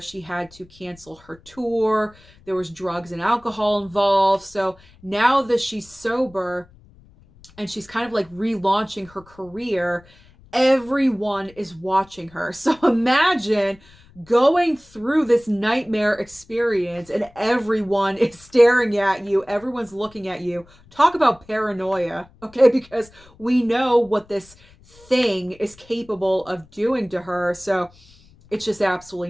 she had to cancel her tour. There was drugs and alcohol involved. So now that she's sober and she's kind of like relaunching her career, everyone is watching her. So imagine going through this nightmare experience and everyone is staring at you, everyone's looking at you. Talk about paranoia, okay? Because we know what this thing is capable of doing to her. So it's just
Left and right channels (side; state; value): left; noise; rumble, 27 dB below the sound